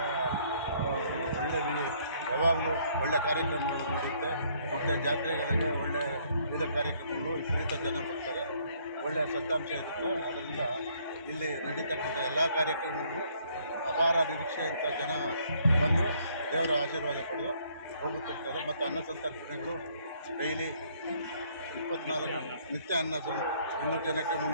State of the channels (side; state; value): both; inverted; correlation -0.65